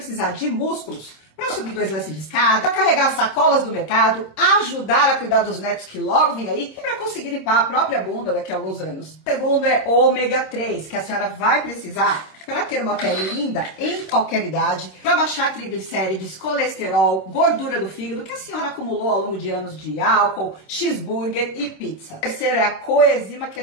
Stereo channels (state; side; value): late; right; 26 ms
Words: de músculos para subir 2 lances de escada, para carregar sacolas do mercado, ajudar a cuidar dos netos que logo vem aí e para conseguir limpar a própria bunda daqui a alguns anos. O segundo é ômega 3, que a senhora vai precisar para ter uma pele linda em qualquer idade, para baixar triglicérides, colesterol, gordura do fígado que a senhora acumulou ao longo de anos de álcool, cheeseburger e pizza. O terceiro é a coenzima